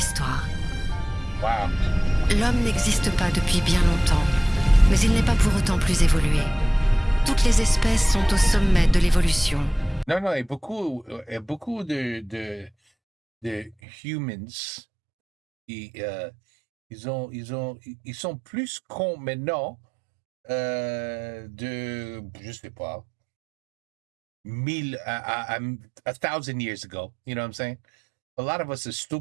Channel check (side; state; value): left; drops out; at 13.8 s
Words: Wow. L'homme n'existe pas depuis bien longtemps, mais il n'est pas pour autant plus évolué. Toutes les espèces sont au sommet de l'évolution. Non, et beaucoup de humans, ils sont plus cons maintenant je sais pas, 1,000 years ago. You know what I'm saying? A lot of us are